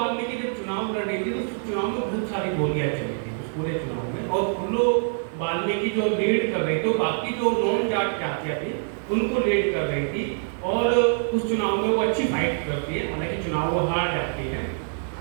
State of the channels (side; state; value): left; silent; digital silence